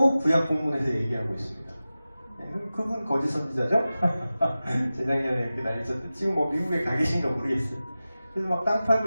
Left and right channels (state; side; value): inverted; both; correlation -0.95